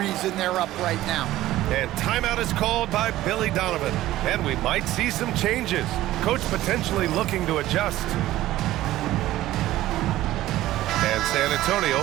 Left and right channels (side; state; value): left; quieter; 15.2 dB